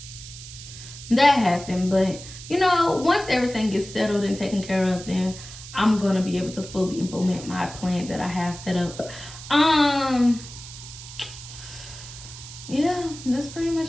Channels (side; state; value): right; noise; hiss, 14 dB below the sound